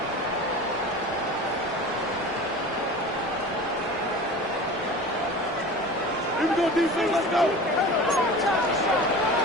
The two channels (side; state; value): both; normal; correlation 0.36